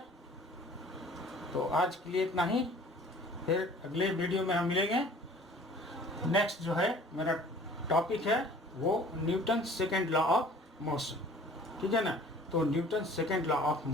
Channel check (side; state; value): both; normal; correlation 0.50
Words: तो आज के लिए इतना ही, फिर अगले वीडियो में हम मिलेंगे। नेक्स्ट जो है मेरा टॉपिक है वो Newton second law of motion, ठीक है ना। तो Newton second law of